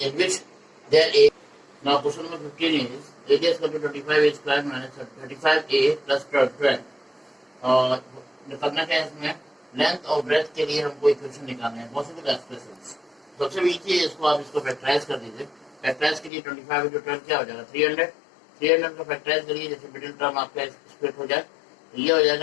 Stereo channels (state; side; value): drops out; right; at 16.3 s